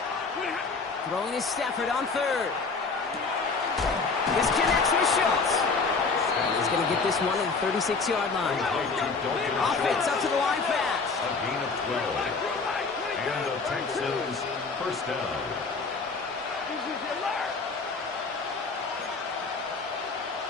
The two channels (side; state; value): right; quieter; 4.4 dB